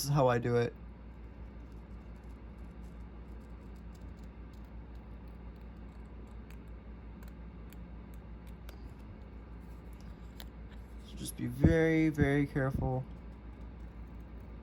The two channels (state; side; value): identical; both; correlation 1.00